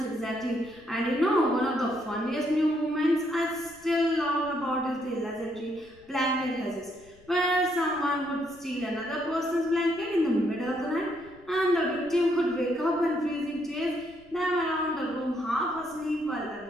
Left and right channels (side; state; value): left; noise; rumble, 27 dB below the sound